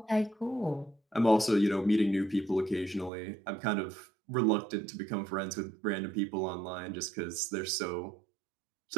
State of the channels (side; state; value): left; drops out; at 3.1 s